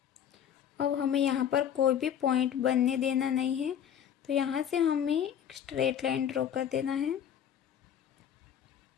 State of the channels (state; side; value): quieter; right; 9.2 dB